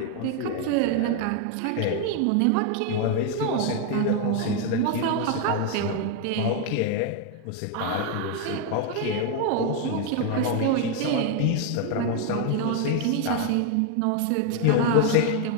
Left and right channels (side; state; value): both; different; correlation 0.01